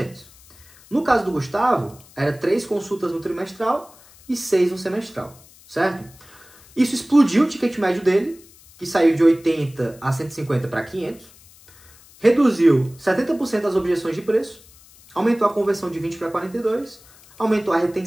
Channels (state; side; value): noise; left; hiss, 25 dB below the sound